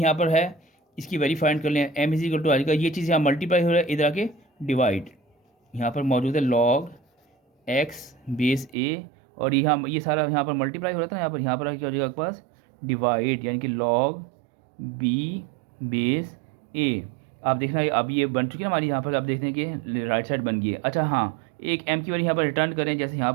पर है, इसकी वैल्यू फाइंड कर लें। एम इज इक्वल टू आएगा, ये चीज़ यहाँ मल्टीप्लाई हो रहा है, इधर आके डिवाइड यहाँ पर मौजूद है लॉग एक्स बेस ए, और ये सारा यहाँ पर मल्टीप्लाई हो रहा था यहाँ पर क्या हो जाएगा आपके पास डिवाइड, यानी कि लॉग बी बेस ए। आप देखना अब ये बन चुकी है ना हमारी, यहाँ पर आप देखते हैं कि राइट साइड बन गई है। अच्छा हाँ, एक एम की वैल्यू यहाँ पर रिटर्न करें, जैसे यहाँ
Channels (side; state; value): left; drops out; at 8.8 s